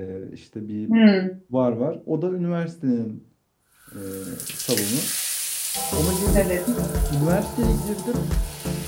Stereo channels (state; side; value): identical; both; correlation 1.00